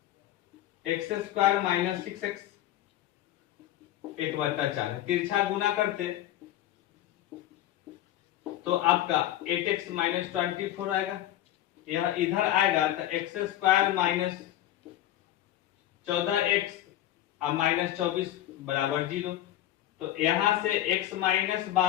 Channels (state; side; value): quieter; right; 13.1 dB